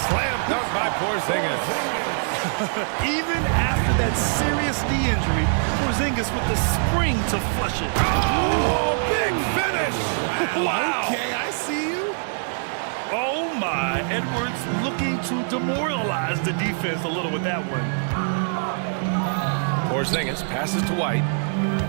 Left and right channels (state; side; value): silent; left; digital silence